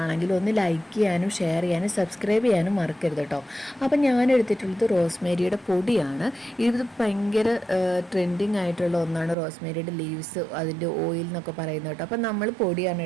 ഒന്ന് ലൈക്ക് ചെയ്യാനും ഷെയർ ചെയ്യാനും സബ്സ്ക്രൈബ് ചെയ്യാനും മറക്കരുത് കേട്ടോ. അപ്പം ഞാൻ എടുത്തിട്ടുള്ളത് റോസ്മേരിയുടെ പൊടിയാണ്. ഇത് ഭയങ്കര ട്രെൻഡിങ് ആയിട്ടുള്ള ഒന്നാണ് റോസ്മേരിയുടെ ലീവ്സ്, അതിൻ്റെ ഓയിൽ എന്നൊക്കെ പറയുന്നത് കേട്ടോ. അപ്പം നമ്മൾ പൊടിയാണ്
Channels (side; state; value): left; drops out; at 9.3 s